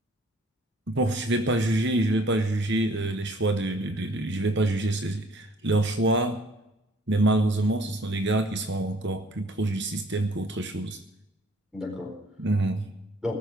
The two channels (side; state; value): both; normal; correlation 0.57